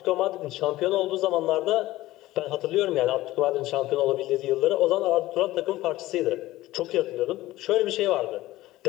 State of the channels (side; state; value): right; quieter; 16.8 dB